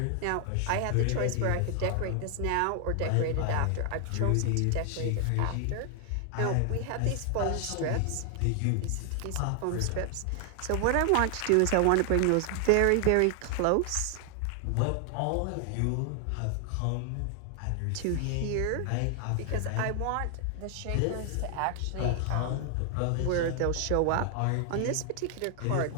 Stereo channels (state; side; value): different; both; correlation 0.00